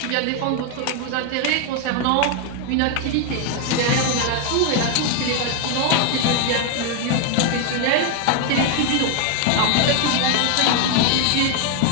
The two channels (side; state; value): both; different; correlation 0.00